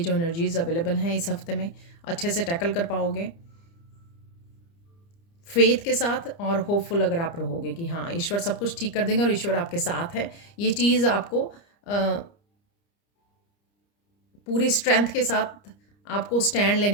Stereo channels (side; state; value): right; late; 30 ms